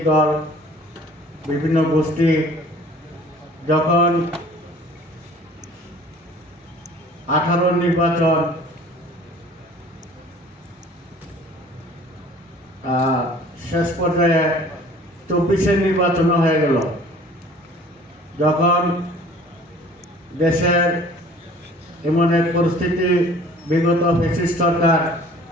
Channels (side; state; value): both; normal; correlation 0.50